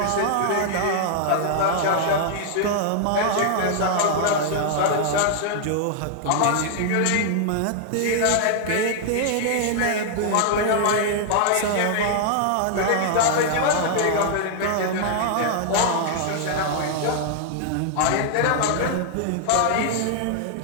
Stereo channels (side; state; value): both; different; correlation 0.00